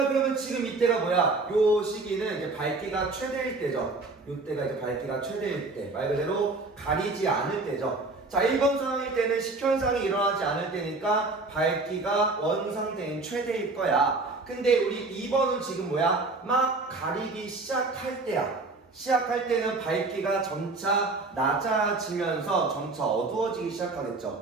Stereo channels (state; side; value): quieter; left; 3.4 dB